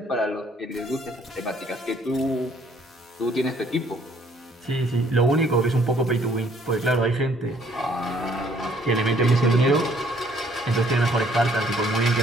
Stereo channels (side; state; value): both; normal; correlation 0.62